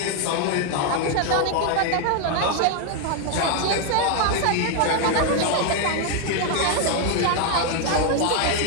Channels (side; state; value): both; different; correlation 0.01